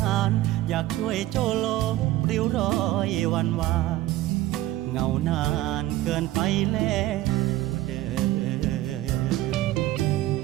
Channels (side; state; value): left; quieter; 15.4 dB